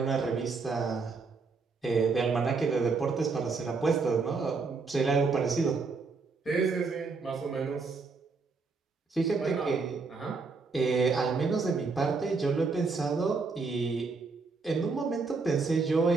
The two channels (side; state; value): left; quieter; 4.4 dB